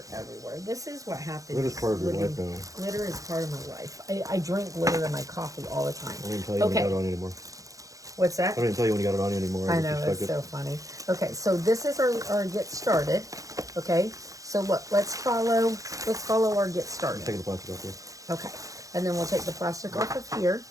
everywhere. This is what happens. Glitter's part of your life now. Glitter is part of my life. I drink glitter in my coffee all the time. I don't even tell you when you got it on anymore. What's that? I don't even tell you when you got it on anymore. I know, it's so funny. Okay, so this is our get started. Okay, so look, let's follow our get started. Take the plastic off here. Okay, and then we'll take the plastic off of here.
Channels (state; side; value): late; left; 0.16 ms